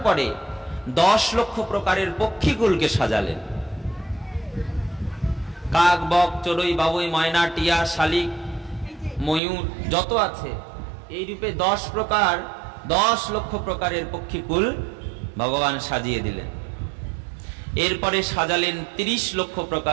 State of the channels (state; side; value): drops out; left; at 9.4 s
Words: পরে 10 লক্ষ প্রকারের পক্ষীকুলকে সাজালেন। কাক, বক, চড়ুই, বাবুই, ময়না, টিয়া, শালিক, ময়ূর যত আছে, এই রূপে 10 লক্ষ প্রকারের পক্ষীকুল ভগবান সাজিয়ে দিলেন। এরপরে সাজালেন 30 লক্ষ